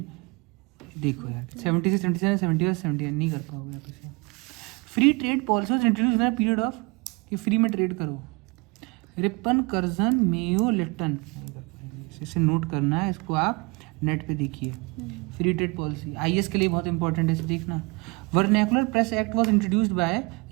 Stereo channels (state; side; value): quieter; left; 28.4 dB